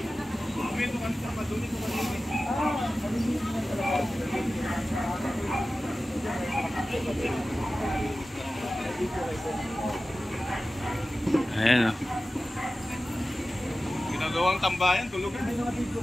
Ayan o. Ginagawang tambayan, tulugan.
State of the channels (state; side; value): normal; both; correlation 0.95